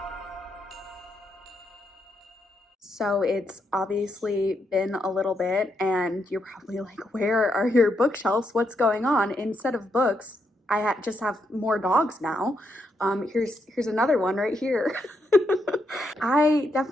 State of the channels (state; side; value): normal; both; correlation 0.80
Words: So it's obviously been a little bit and you're probably like, where are your bookshelves? What's going on? Instead of books, just have more dogs now. Here's another one right here. I